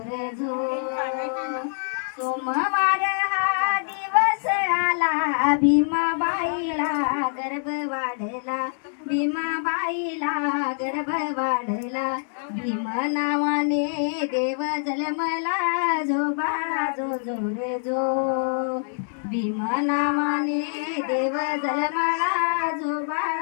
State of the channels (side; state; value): right; silent; digital silence